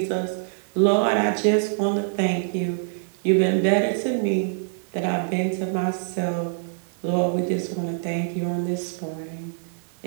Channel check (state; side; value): silent; left; digital silence